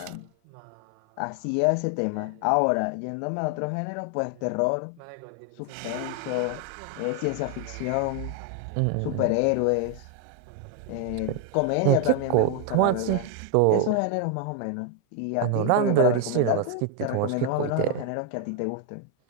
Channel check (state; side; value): different; both; correlation 0.01